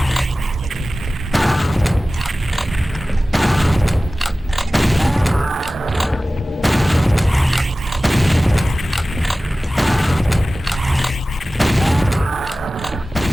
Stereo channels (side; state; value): both; normal; correlation 0.96